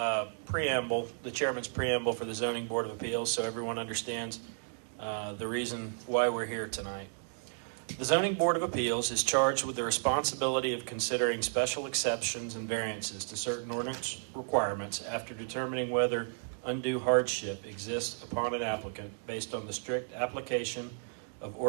preamble, the chairman's preamble for the Zoning Board of Appeals, so everyone understands the reason why we're here tonight. The Zoning Board of Appeals is charged with the responsibility of considering special exceptions and variances to certain ordinance requirements after determining whether undue hardship exists upon an applicant based on the strict application of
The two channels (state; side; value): silent; left; digital silence